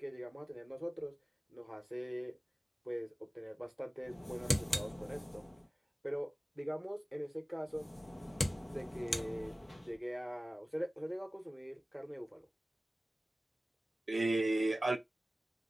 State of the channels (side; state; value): both; normal; correlation 0.97